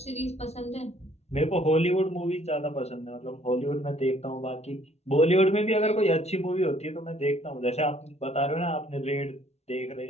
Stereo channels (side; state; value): right; late; 0.31 ms